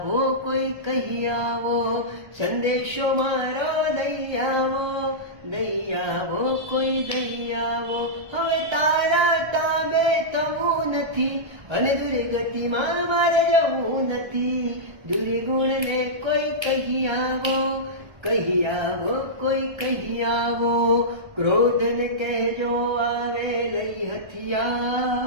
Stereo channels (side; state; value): left; late; 1.3 ms